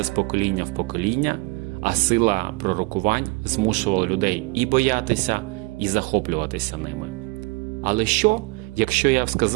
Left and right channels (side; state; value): left; quieter; 26.5 dB